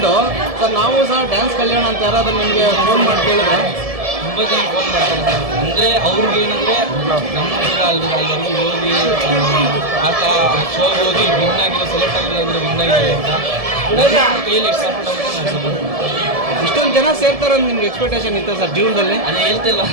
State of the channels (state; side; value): late; left; 1.7 ms